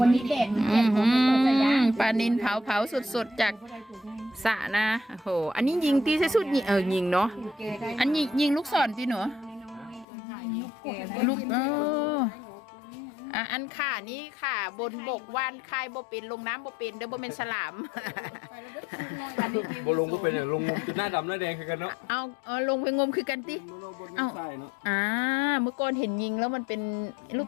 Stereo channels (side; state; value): right; drops out; at 10.1 s